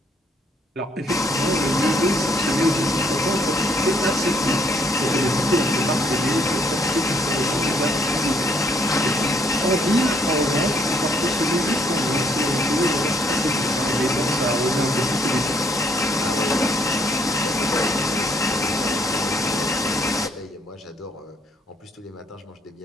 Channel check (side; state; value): both; normal; correlation 0.67